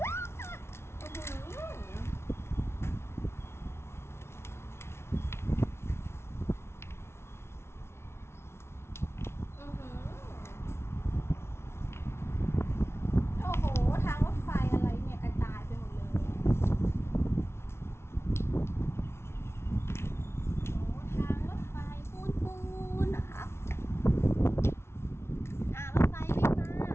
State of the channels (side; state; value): right; late; 0.12 ms